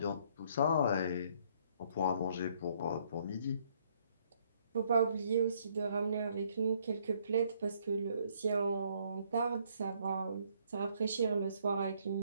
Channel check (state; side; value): inverted; both; correlation -0.66